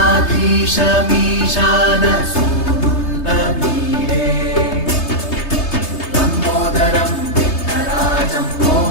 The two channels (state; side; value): late; right; 3.3 ms